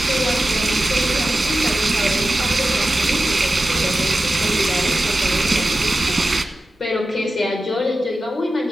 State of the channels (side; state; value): both; normal; correlation 0.93